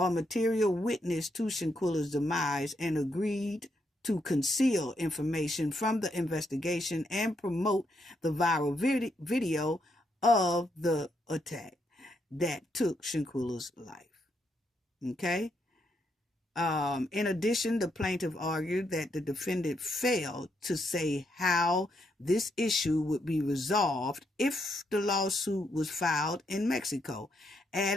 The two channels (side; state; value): both; normal; correlation 0.78